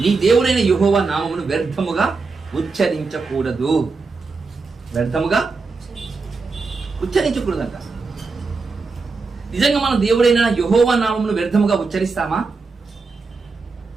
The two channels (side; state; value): left; quieter; 4.3 dB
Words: యెహోవా నామమును వ్యర్థముగా ఉచ్చరించకూడదు. వ్యర్థముగా ఉచ్చరించకూడదంట. నిజంగా మనం దేవుడైన యెహోవా నామమును వ్యర్థముగా ఉచ్చరిస్తామా